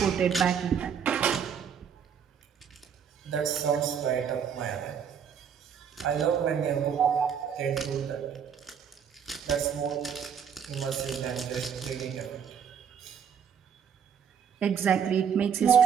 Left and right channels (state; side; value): quieter; left; 7.6 dB